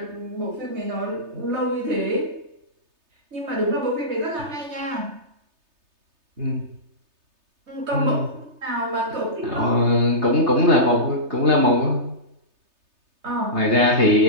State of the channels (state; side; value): late; left; 3.3 ms